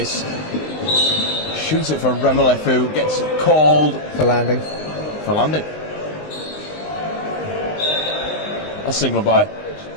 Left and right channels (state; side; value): late; right; 19 ms